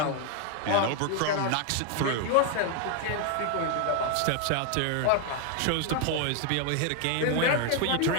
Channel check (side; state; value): both; different; correlation 0.00